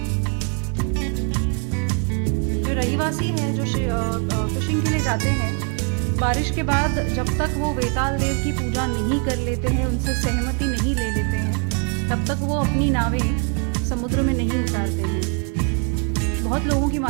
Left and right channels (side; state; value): left; quieter; 37.5 dB